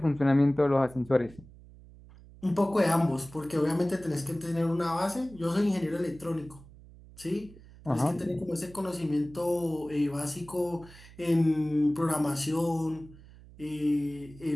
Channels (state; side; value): noise; right; hum, 21 dB below the sound